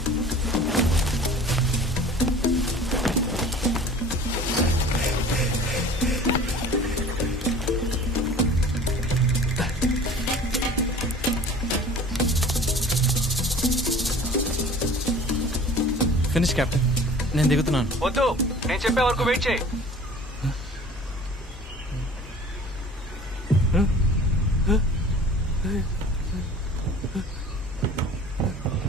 Finish captain. నేను దిగుతున్నాను. వద్దు, నేను చెప్పే వరకు వెయిట్ చేయి.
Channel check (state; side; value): normal; both; correlation 0.45